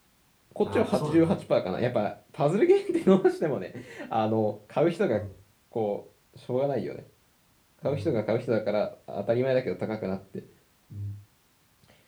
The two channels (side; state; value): both; identical; correlation 1.00